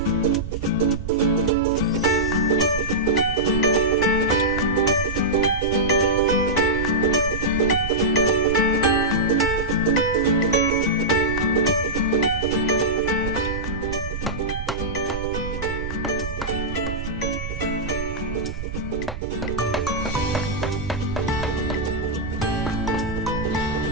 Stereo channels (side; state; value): right; noise; rumble, 7 dB below the sound